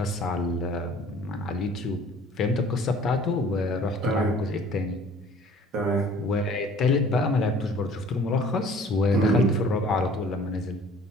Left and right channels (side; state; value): both; normal; correlation 0.51